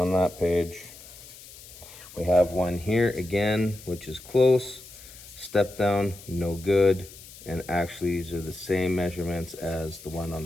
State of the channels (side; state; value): left; noise; hiss, 18 dB below the sound